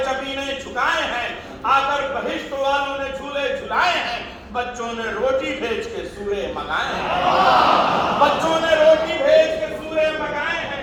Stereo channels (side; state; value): both; identical; correlation 1.00